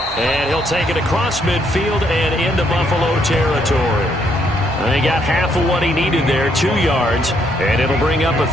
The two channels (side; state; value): both; normal; correlation 0.72